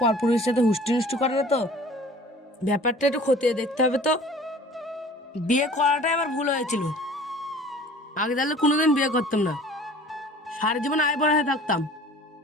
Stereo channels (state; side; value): normal; both; correlation 0.47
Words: পরপুরুষের সাথে হুষ্টি হুষ্টি করে না তো, ব্যাপারটা একটু খতিয়ে দেখতে হবে তো। বিয়ে করাটাই আমার ভুল হয়েছিল, আগে তাহলে কোনোদিন বিয়ে করতাম না, সারা জীবন আয় বড় হয়ে থাকতাম।